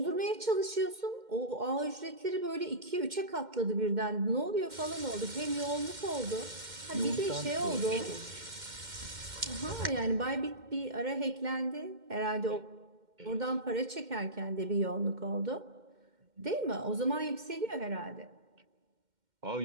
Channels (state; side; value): late; left; 2.1 ms